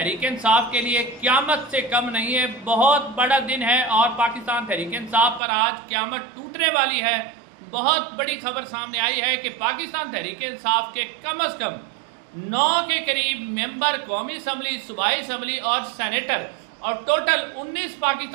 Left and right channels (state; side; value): drops out; left; at 5.4 s